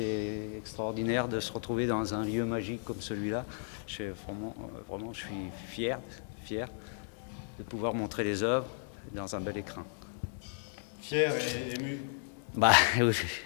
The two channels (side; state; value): right; silent; digital silence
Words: extraordinaire de se retrouver dans un lieu magique comme celui-là. Vraiment, je suis fier de pouvoir montrer les œuvres dans un bel écrin. Fier et ému. Bah